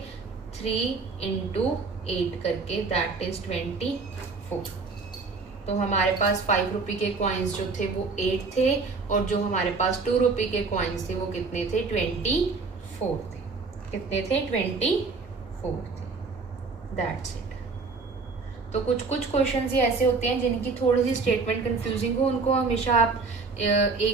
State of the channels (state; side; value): quieter; left; 4.3 dB